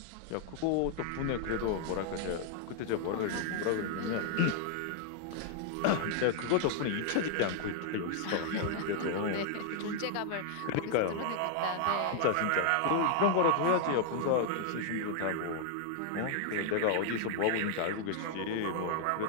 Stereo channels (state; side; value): different; both; correlation 0.00